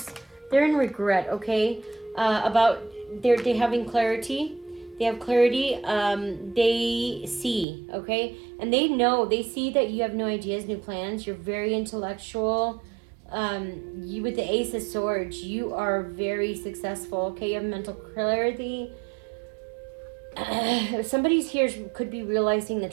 They're in regret, okay? They're having clarity. They have clarity. They see, okay? And they see that you have no ideas, no plans. You're very intellectual. You with the Ace of Swords, you are very successful, okay? You have mental clarity. Somebody's here could be realizing the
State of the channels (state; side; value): drops out; left; at 7.7 s